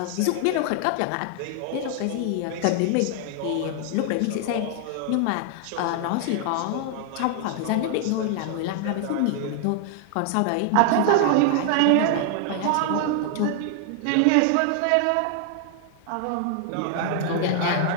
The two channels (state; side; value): different; both; correlation 0.00